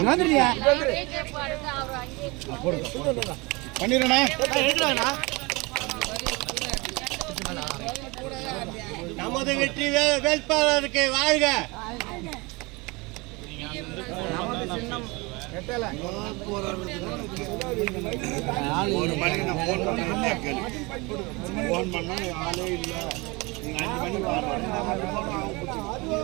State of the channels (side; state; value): left; quieter; 25.7 dB